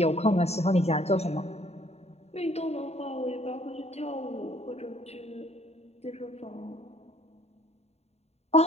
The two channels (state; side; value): late; right; 0.31 ms